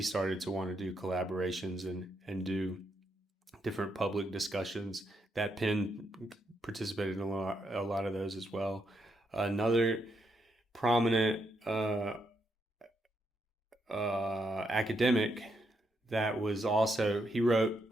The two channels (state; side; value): normal; both; correlation 0.80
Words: started to want to do collaborations and do different public discussions. That Penn participated in a lot of those as well. Another prominent academic that was also, he wrote